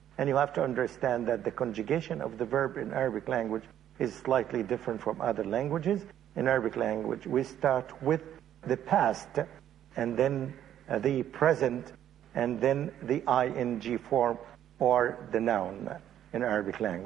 And you have to understand that the conjugation of the verb in Arabic language is slightly different from other languages. In Arabic language, we start with the past, and then the present, and then the ing form, or the noun in Arabic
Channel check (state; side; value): quieter; left; 10.9 dB